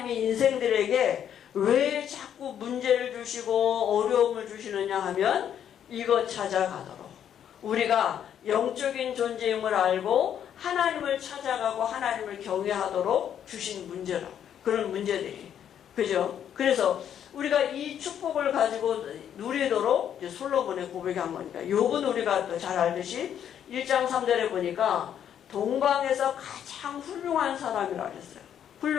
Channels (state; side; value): quieter; right; 9.4 dB